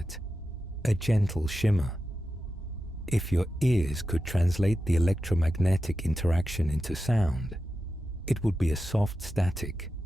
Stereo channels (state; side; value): normal; both; correlation 0.91